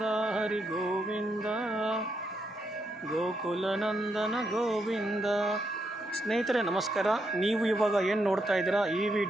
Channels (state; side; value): normal; both; correlation 0.79